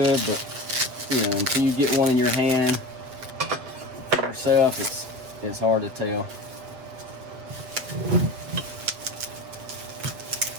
but until you get one in your hand for yourself, it's hard to tell.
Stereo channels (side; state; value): left; late; 7.9 ms